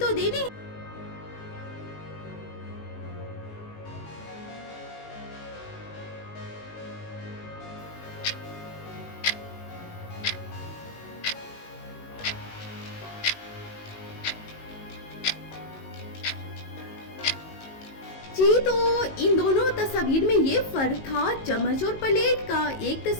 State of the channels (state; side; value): late; right; 19 ms